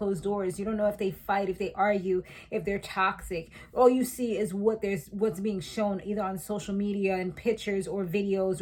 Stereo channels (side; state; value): both; identical; correlation 1.00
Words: doors. You don't know if they fight, if they argue, if they're toxic. All you see is what's being shown either on social media and pictures or videos